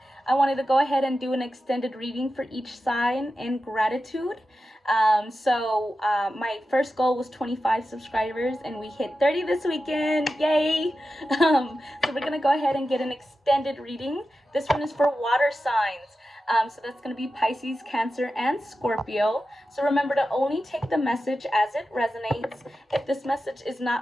I wanted to go ahead and do an extended reading for each sign in gratitude. My first goal was 25 subscribers, and we hit 30 this weekend. Yay! So we're going to go ahead and get an extended reading. This one is for water signs. So that's going to be Pisces, Cancer, and Scorpio. So remember to only take the message as it resonates. If this message is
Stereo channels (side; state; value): both; normal; correlation 0.92